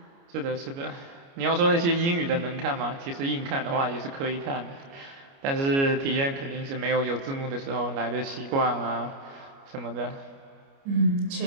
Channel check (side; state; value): left; late; 29 ms